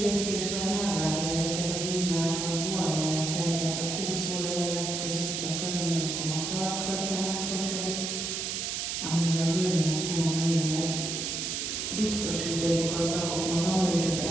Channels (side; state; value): right; noise; hiss, 2 dB below the sound